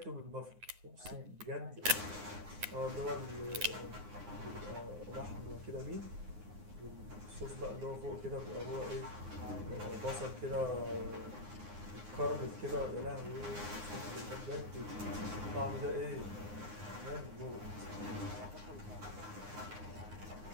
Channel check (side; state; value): left; late; 9.6 ms